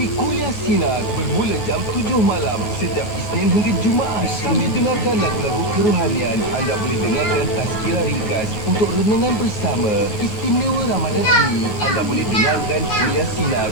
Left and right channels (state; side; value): late; right; 9.6 ms